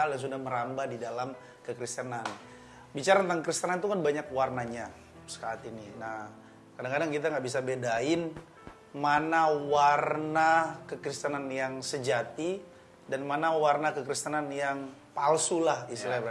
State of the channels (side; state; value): both; identical; correlation 1.00